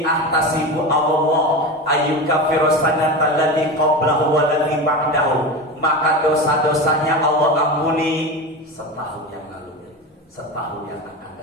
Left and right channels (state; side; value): normal; both; correlation 0.24